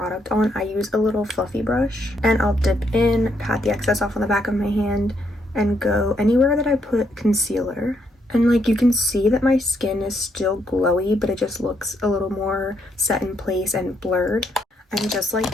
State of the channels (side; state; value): both; normal; correlation 0.75